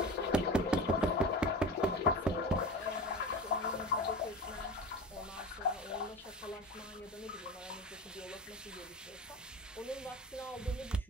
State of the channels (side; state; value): both; normal; correlation 0.31